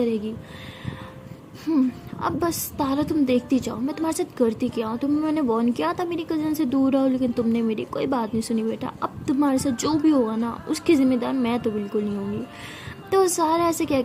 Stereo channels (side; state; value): both; identical; correlation 1.00